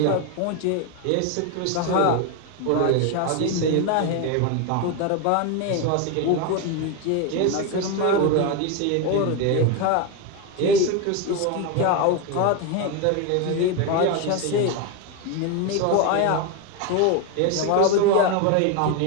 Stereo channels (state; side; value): different; both; correlation 0.02